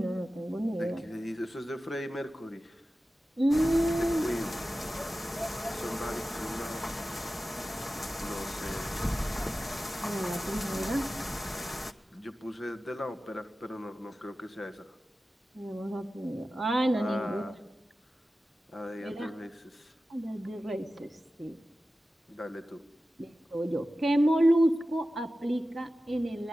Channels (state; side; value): normal; both; correlation 0.94